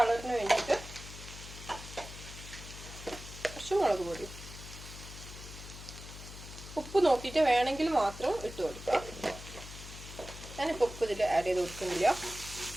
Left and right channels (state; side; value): noise; left; hum, 13 dB below the sound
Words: വേണ്ടിയിട്ട് മുളക് പൊടി. ഉപ്പ് നോക്കിയിട്ട് വേണമെങ്കിൽ മാത്രം ഇട്ട് കൊടുക്കുക. ഞാനിപ്പോൾ ഉപ്പ് ഇതിൽ ആഡ് ചെയ്ത് കൊടുക്കുന്നില്ല.